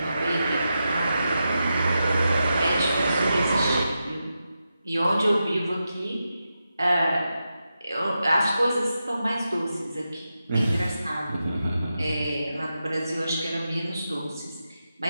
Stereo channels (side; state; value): both; inverted; correlation -0.89